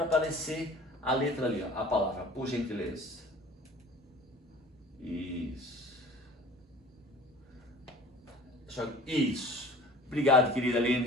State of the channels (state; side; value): normal; both; correlation 0.45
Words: aparecer a letra ali, ó, a palavra, por gentileza. Isso. Isso. Obrigado, querida